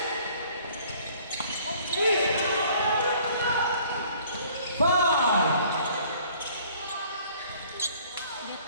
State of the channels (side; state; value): both; inverted; correlation -0.56